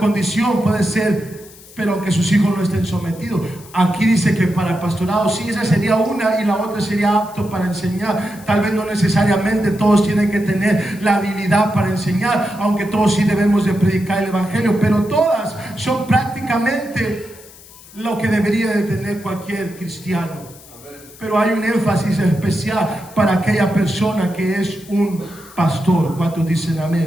puede ser, pero aunque sus hijos no estén sometidos. Aquí dice que para el pastorado, sí, esa sería una, y la otra sería apto para enseñar. Tal vez no necesariamente todos tienen que tener la habilidad para enseñar, aunque todos sí debemos de predicar el evangelio, pero todas son prácticamente lo que debería de tener cualquier cristiano. Pero hay un énfasis especial para aquella persona que es un pastor. ¿Cuántos dicen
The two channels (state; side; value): noise; left; hiss, 21 dB below the sound